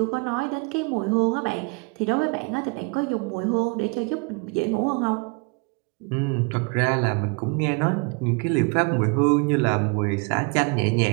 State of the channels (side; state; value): left; quieter; 31.3 dB